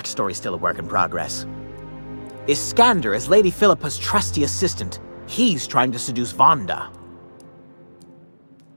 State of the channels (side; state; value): both; inverted; correlation -1.00